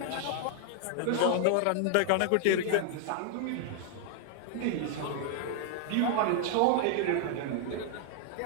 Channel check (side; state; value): both; different; correlation 0.00